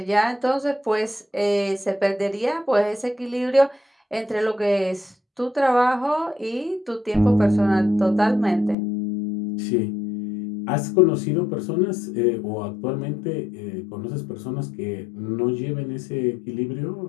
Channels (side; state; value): right; drops out; at 8.8 s